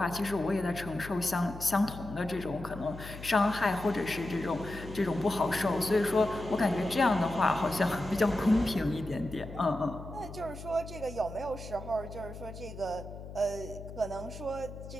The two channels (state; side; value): noise; left; hum, 12 dB below the sound